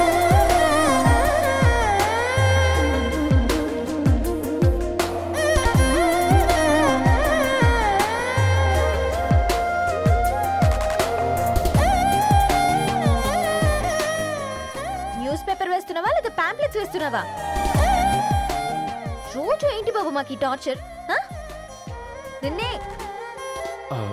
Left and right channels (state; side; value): identical; both; correlation 1.00